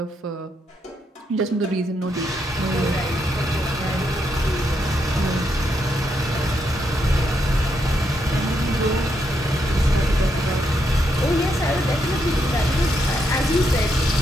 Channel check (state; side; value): normal; both; correlation 0.79